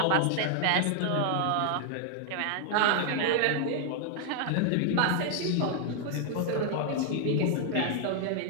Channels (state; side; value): different; both; correlation 0.00